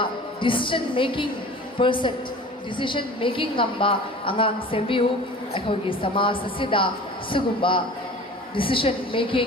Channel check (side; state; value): both; normal; correlation 0.41